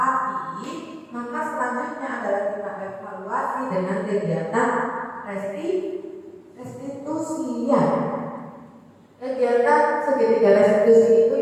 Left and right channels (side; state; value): both; identical; correlation 1.00